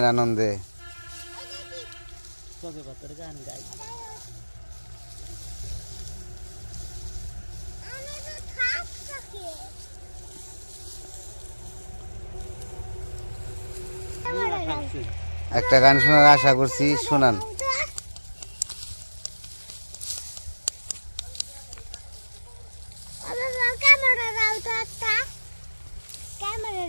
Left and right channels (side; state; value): both; inverted; correlation -1.00